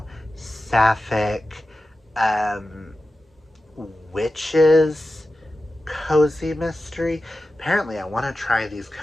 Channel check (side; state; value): both; normal; correlation 0.93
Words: sapphic, witches, cozy mystery. Apparently, I want to try these